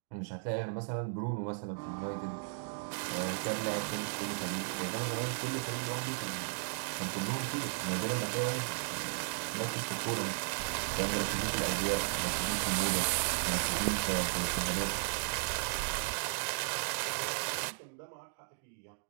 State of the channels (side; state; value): left; silent; digital silence